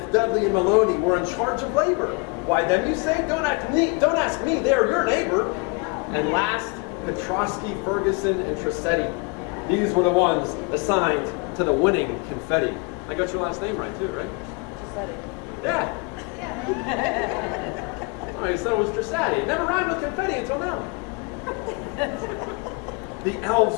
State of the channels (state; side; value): quieter; right; 31.3 dB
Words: Dudley, and Maloney were in charge of labor. Why them, you say? Don't ask me, they're your neighbor. And last, Petrosky, Ferguson, and Trissetti. These were the ones assigned to the winning confetti. I got your last name right too, right? Trissetti. Yeah. Oh, you said it was Trissetti. It never rhymed with confetti until now. The